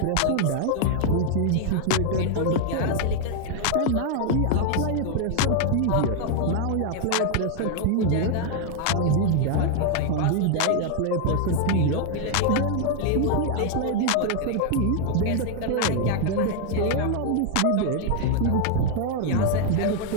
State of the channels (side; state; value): both; different; correlation 0.00